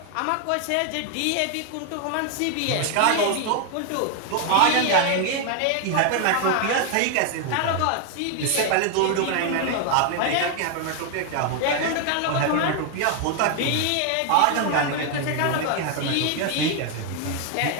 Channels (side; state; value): both; different; correlation 0.00